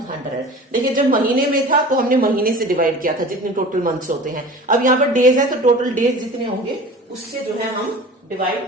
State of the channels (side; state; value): both; normal; correlation 0.39